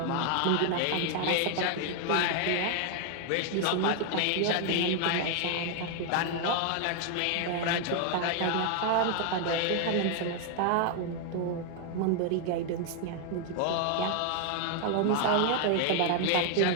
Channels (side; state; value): both; different; correlation 0.00